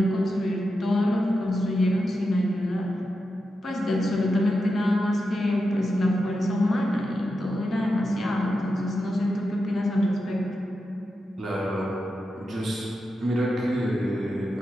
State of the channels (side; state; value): both; normal; correlation 0.89